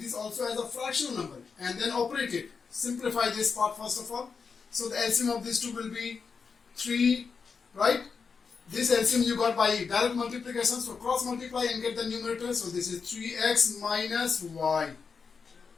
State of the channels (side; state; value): right; quieter; 5.4 dB